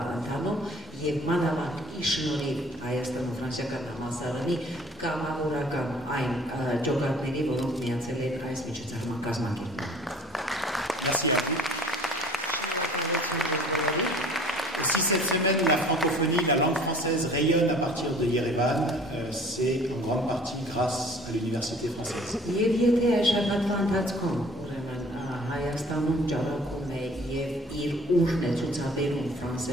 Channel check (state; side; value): normal; both; correlation 0.51